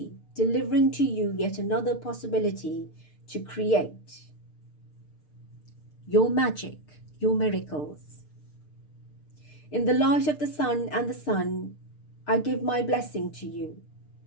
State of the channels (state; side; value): late; right; 6.6 ms